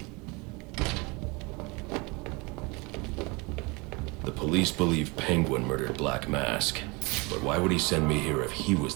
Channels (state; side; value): quieter; left; 27.3 dB